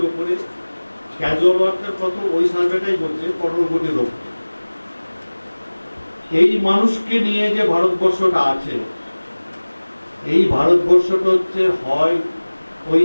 উপরে। ক্যাজুয়াল ওয়ার্কার কত? ওই সার্ভেটাই বলছে 15 কোটির উপরে। এই মানুষকে নিয়ে যে ভারতবর্ষটা আছে, এই ভারতবর্ষটা হচ্ছে হয় ওই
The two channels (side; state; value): both; inverted; correlation -1.00